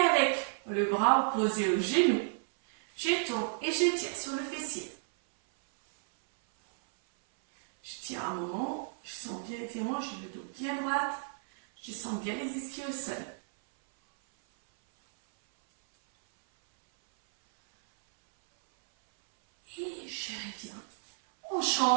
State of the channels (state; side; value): silent; left; 56 dB below the other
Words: le bras opposé au genou, je tourne et je tire sur le fessier. Je tiens un moment, je sens bien l'étirement, j'ai le dos bien droit, je sens bien les ischios au sol. Et je reviens. On